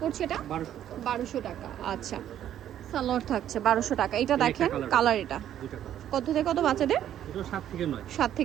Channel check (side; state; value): left; quieter; 11.0 dB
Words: পড়ছে এটা 1200 টাকা। আচ্ছা, সালোয়ার থাকছে 1200 টাকা। এটা দেখেন, কালার এটা। কত থেকে কত বাচ্চাদের? এটাও 7 থেকে 9। 7